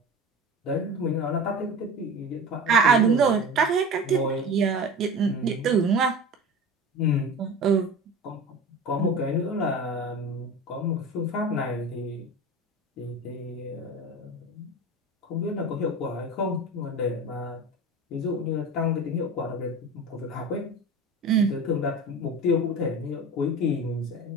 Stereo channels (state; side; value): normal; both; correlation 0.33